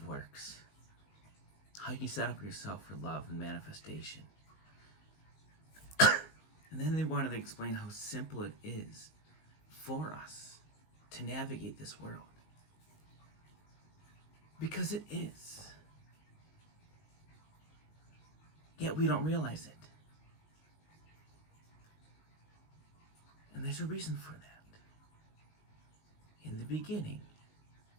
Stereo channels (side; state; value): right; late; 19 ms